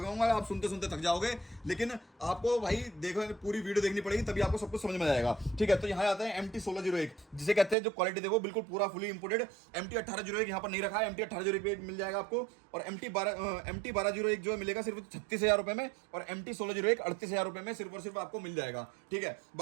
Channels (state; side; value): drops out; left; at 7.8 s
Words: आप सुनते सुनते थक जाओगे। लेकिन आपको भाई देखो पूरी वीडियो देखनी पड़ेगी तभी आपको सब कुछ समझ में आएगा। ठीक है, तो यहाँ आता है MT1601, जिसे कहते हैं जो क्वालिटी देखो बिल्कुल पूरा फुली इंपोर्टेड। MT1801 यहाँ पर नहीं रखा है, MT1801 मिल जाएगा आपको। और MT1201 जो मिलेगा सिर्फ 36,000 रुपए में। और MT1601 38,000 रुपए में सिर्फ और सिर्फ आपको मिल जाएगा। ठीक है,